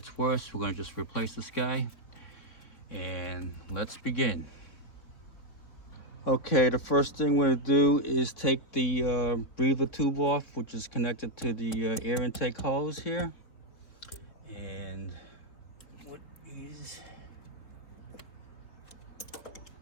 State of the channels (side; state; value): right; late; 3.6 ms